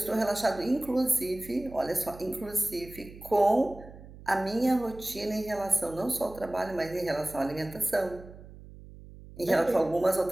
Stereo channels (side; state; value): right; noise; hum, 17 dB below the sound